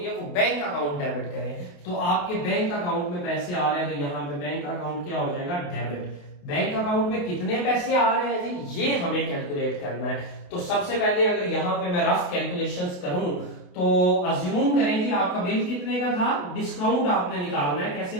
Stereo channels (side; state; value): right; late; 28 ms